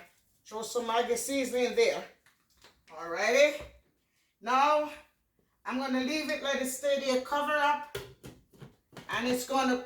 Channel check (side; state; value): both; identical; correlation 1.00